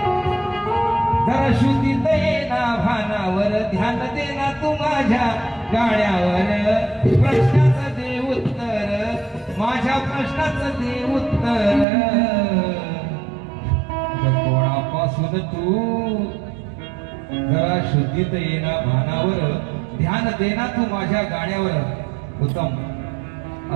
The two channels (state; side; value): drops out; left; at 11.9 s